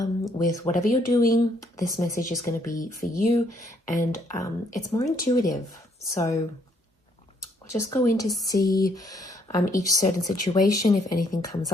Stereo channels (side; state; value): both; normal; correlation 0.69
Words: with whatever you're doing, this message is going to be for you, and it's more intuitive. So we'll just go in to see each certain situation, if anything comes